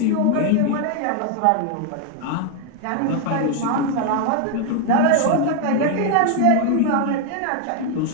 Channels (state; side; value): different; both; correlation 0.01